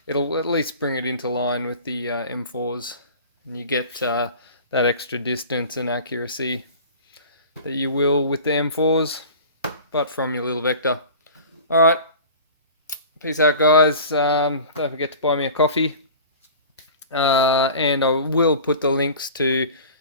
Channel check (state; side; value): inverted; both; correlation -0.40